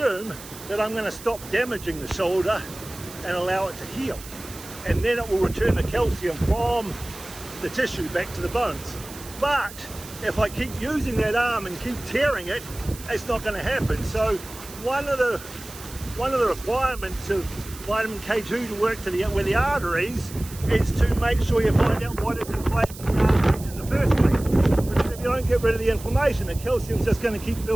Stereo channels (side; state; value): right; noise; hiss, 16 dB below the sound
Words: that I'm going to stop damaging the shoulder and allow it to heal, and then it will return the calcium from the tissue back to the bones. But if I keep using that arm and keep tearing it, it's not going to happen. So one of the requirements of vitamin K2 to work with the arteries is to make sure you find out what is inflaming the arteries in the first place. Because if you don't get rid of the inflammation, the calcium's just going to keep